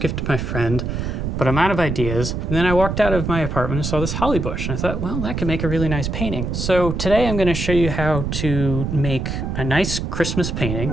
to my friend, but I'm out of ideas. And then I walked out of my apartment and saw this holly bush, and I thought, well, that could make a really nice painting. So today I'm going to show you how to make a nice Christmas painting.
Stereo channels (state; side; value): noise; right; rumble, 3 dB below the sound